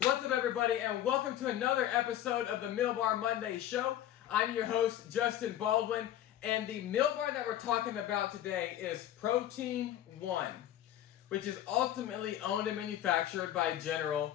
What's up, everybody, and welcome to another episode of the Meal Bar Monday Show. I'm your host, Justin Baldwin, and the meal bar that we're talking about today is Protein One, which is ultimately owned and manufactured by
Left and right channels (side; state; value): right; quieter; 12.1 dB